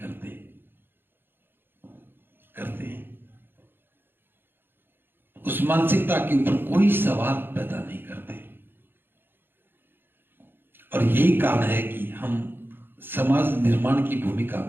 हैं। उस मानसिकता के ऊपर कोई सवाल पैदा नहीं करते। और यही कारण है कि हम समाज निर्माण की भूमिका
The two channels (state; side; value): late; left; 0.10 ms